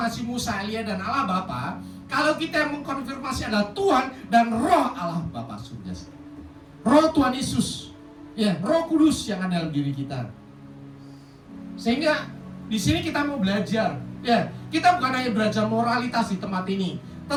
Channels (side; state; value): both; identical; correlation 1.00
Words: Musa, Elia dan Allah Bapa, kalau kita yang mengkonfirmasi adalah Tuhan dan Roh Allah Bapa surga. Roh Tuhan Yesus, ya, Roh Kudus yang ada dalam diri kita. Sehingga di sini kita mau belajar, ya, kita bukan hanya belajar moralitas di tempat ini,